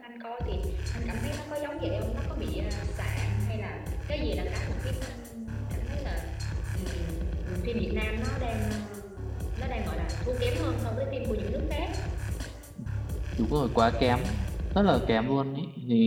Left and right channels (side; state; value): both; identical; correlation 1.00